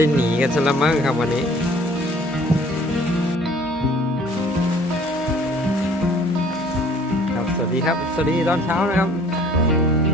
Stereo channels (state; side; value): normal; both; correlation 0.54